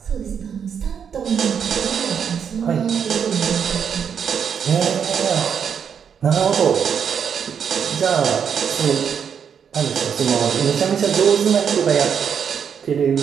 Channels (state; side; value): quieter; left; 7.5 dB